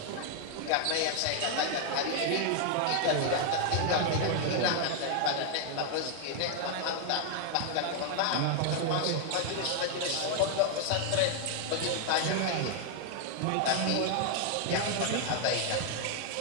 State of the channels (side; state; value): both; different; correlation 0.00